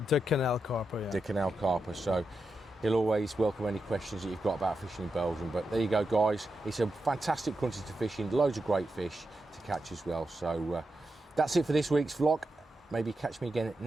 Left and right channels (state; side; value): normal; both; correlation 0.87